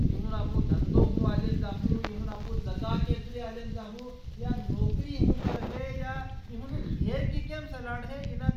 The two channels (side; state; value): both; identical; correlation 1.00